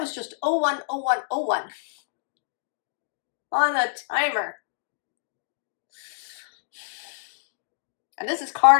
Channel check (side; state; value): right; silent; digital silence